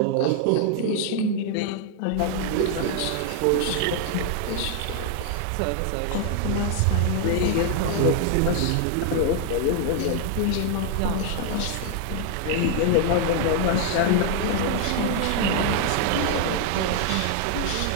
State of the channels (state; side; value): different; both; correlation 0.00